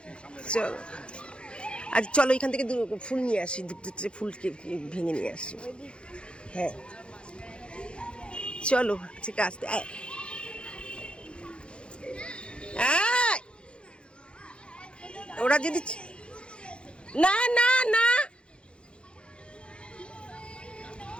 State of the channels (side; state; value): right; late; 0.056 ms